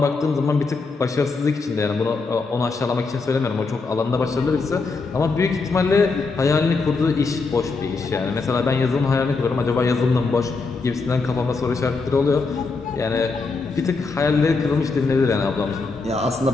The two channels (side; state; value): right; quieter; 4.1 dB